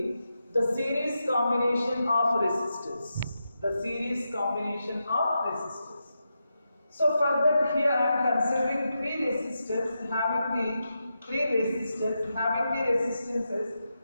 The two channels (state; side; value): inverted; both; correlation -0.87